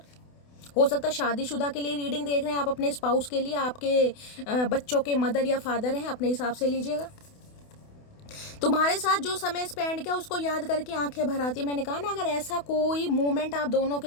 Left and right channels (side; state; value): right; late; 28 ms